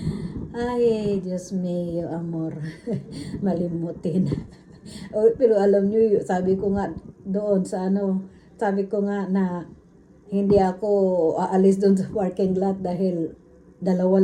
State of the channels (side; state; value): both; identical; correlation 1.00